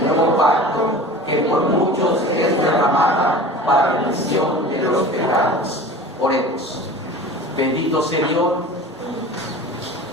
nuevo pacto, que por muchos es derramada para remisión de los pecados. Oremos. Bendito Señor.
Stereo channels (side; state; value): both; normal; correlation 0.38